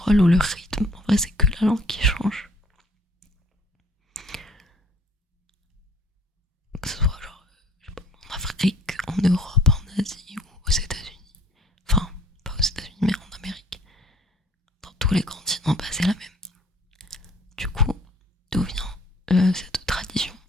ou le rythme, en vrai c'est que la langue qui change. Que ce soit genre, je sais pas, en Afrique, en Europe, en Asie ou aux États-Unis. Enfin, pas aux États-Unis, mais en Amérique. Dans tous les continents, bah, c'est la même. Du coup, d'où vient cette tradition?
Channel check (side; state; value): both; normal; correlation 0.56